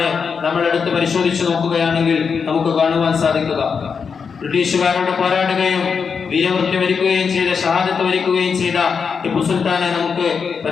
നമ്മൾ എടുത്ത് പരിശോധിച്ചു നോക്കുകയാണെങ്കിൽ നമുക്ക് കാണുവാൻ സാധിക്കുക. ബ്രിട്ടീഷുകാരോട് പോരാടുകയും വീരമൃത്യു വരിക്കുകയും ചെയ്ത, ഷഹാദത്ത് വരിക്കുകയും ചെയ്ത ടിപ്പു സുൽത്താനെ നമുക്ക്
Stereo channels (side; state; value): right; quieter; 5.9 dB